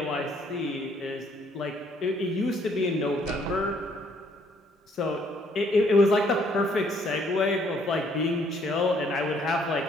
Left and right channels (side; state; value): both; normal; correlation 0.66